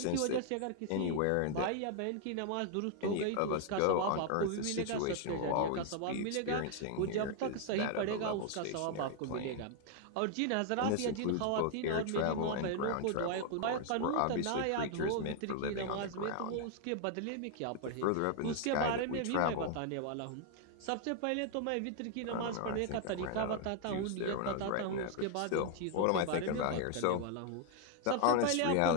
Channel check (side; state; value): both; different; correlation 0.00